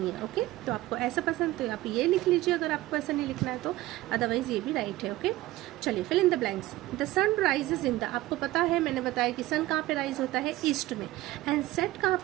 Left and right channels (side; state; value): left; quieter; 17.1 dB